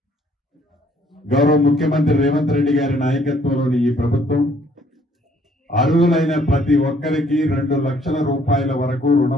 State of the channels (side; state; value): both; normal; correlation 0.63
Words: గౌరవ ముఖ్యమంత్రి రేవంత్ రెడ్డి గారి నాయకత్వంలోని ఈ ప్రభుత్వం అర్హులైన ప్రతి ఒక్కరికి 2 లక్షల రూపాయల వరకు